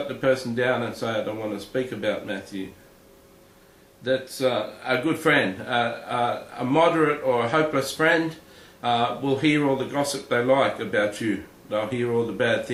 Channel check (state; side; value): identical; both; correlation 1.00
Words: the person down and say, I don't want to speak about Matthew. That's a good friend. A moderate or a hopeless friend will hear all the gossip they like about you. They'll hear all the bad